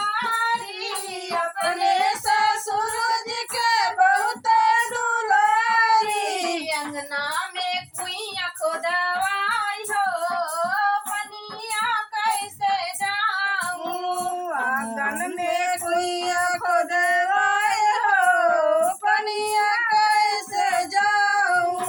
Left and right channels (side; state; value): both; identical; correlation 1.00